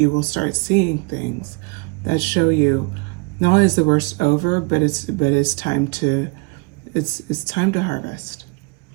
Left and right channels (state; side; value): quieter; left; 29.6 dB